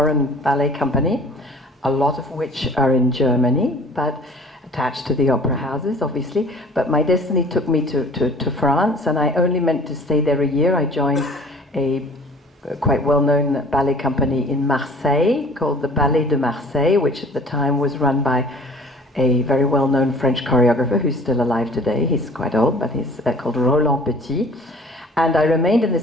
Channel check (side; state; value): both; normal; correlation 0.49